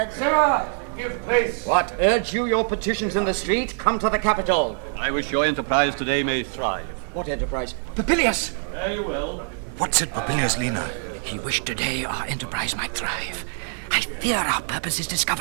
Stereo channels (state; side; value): quieter; left; 38.7 dB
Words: Sirrah, give place. What, urge you your petitions in the street? Come to the capital. I wish your enterprise today may thrive. What enterprise? Papilius! Fare you well. What said Papilius, Lena? He wished today our enterprise might thrive. I fear our purpose is